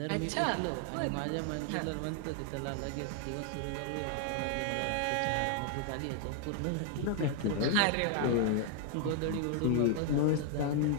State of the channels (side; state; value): both; different; correlation 0.00